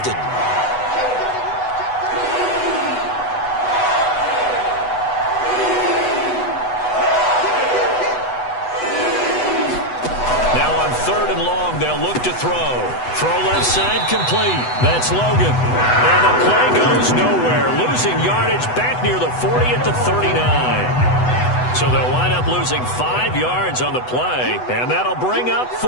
They'll look to throw. Throw left side complete. That's Logan. And the play goes nowhere. Losing yardage back near the 40 at the 39. So they'll wind up losing 5 yards on the play. And that'll bring up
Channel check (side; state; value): right; late; 8.0 ms